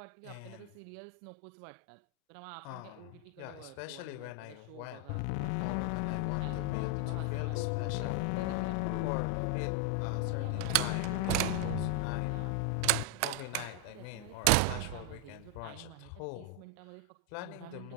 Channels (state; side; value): different; both; correlation 0.00